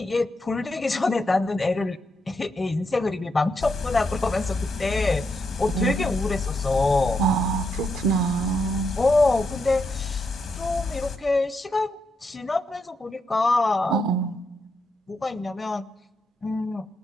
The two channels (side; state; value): both; normal; correlation 0.81